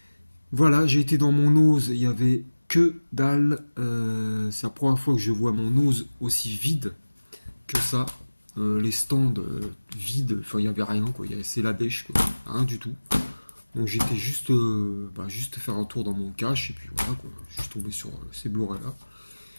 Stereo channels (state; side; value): inverted; both; correlation -1.00